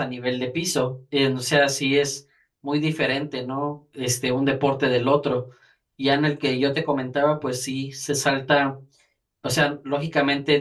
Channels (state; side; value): identical; both; correlation 1.00